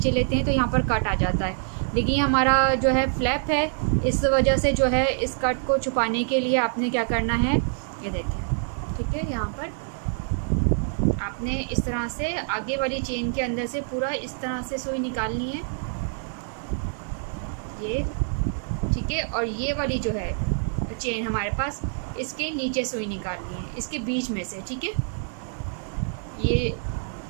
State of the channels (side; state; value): left; silent; 58 dB below the other